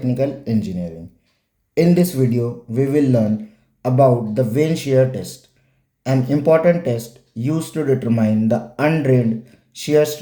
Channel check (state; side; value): identical; both; correlation 1.00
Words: Engineering. In this video, we will learn about the Vane Shear Test, an important test used to determine the undrained shear